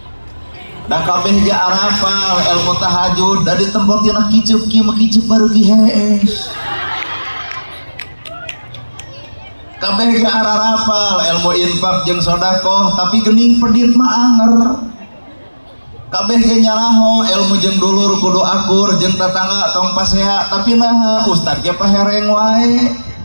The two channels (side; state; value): both; inverted; correlation -1.00